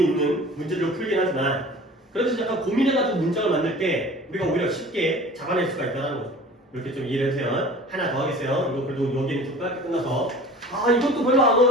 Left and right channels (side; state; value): both; normal; correlation 0.43